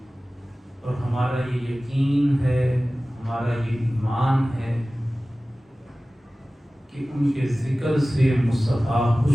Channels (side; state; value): both; normal; correlation 0.97